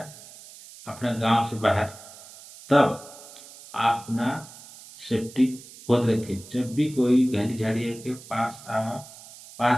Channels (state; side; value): noise; right; hiss, 18 dB below the sound